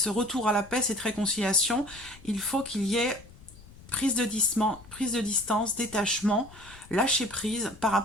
retour à la paix, cette réconciliation, il faut qu'il y ait prise de distance, détachement, lâcher prise par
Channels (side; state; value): left; noise; rumble, 21 dB below the sound